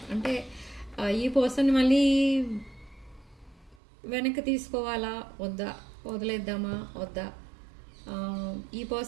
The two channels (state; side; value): drops out; left; at 3.8 s